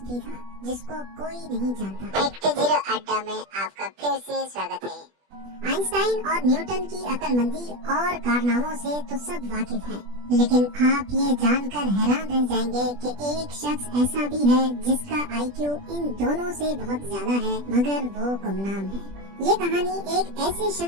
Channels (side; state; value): left; late; 20 ms